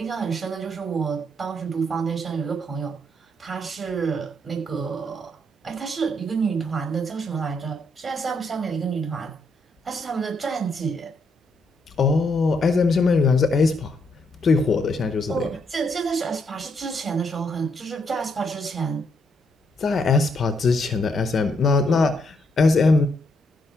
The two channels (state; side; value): normal; both; correlation 0.75